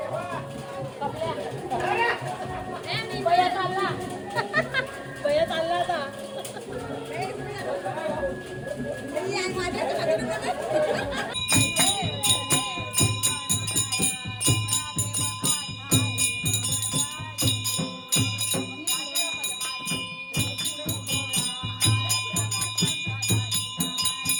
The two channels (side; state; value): both; identical; correlation 1.00